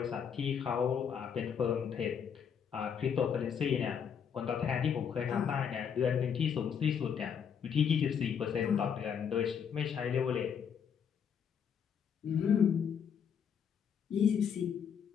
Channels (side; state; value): right; quieter; 7.5 dB